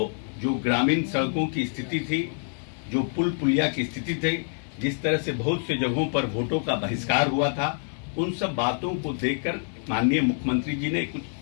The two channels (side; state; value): right; silent; 61 dB below the other